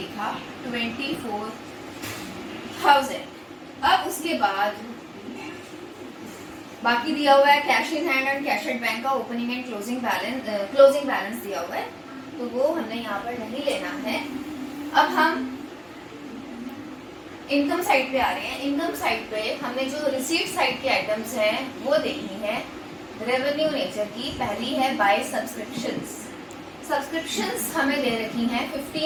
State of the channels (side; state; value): both; identical; correlation 1.00